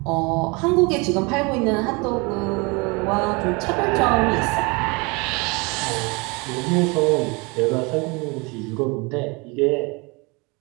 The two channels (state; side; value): quieter; left; 28.1 dB